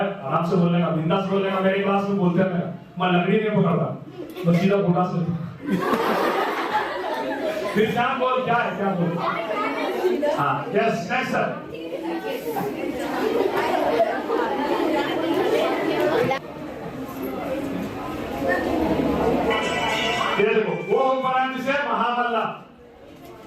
आराम से बोलने का, बिंदास बोलने का। मेरे क्लास में बोलते हैं मैं लकड़ी नहीं पकड़ता, तो सीधा घोड़ा से फिर क्या बोल, क्या है क्या बोल। हाँ यस नेक्स्ट सर। ये देखो वो हुक्मरान जिसे महामल्ला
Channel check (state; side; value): identical; both; correlation 1.00